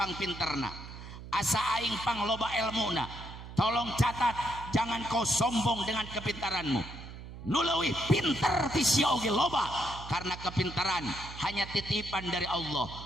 pinterna, asa aing pang loba ilmuna, tolong catat, jangan kau sombong dengan kepintaranmu. Nu leuwih pinter ti sia oge loba, karena kepintaran hanya titipan dari Allah.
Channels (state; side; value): noise; right; hum, 13 dB below the sound